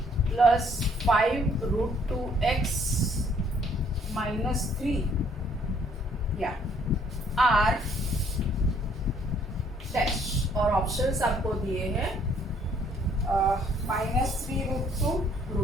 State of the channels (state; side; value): normal; both; correlation 0.64